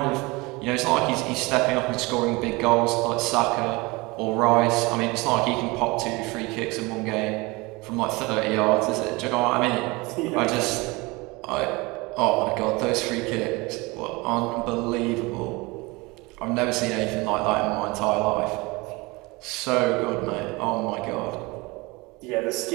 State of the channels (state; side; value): quieter; left; 24.3 dB